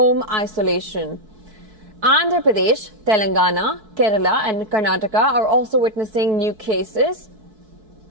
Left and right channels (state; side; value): late; left; 4.6 ms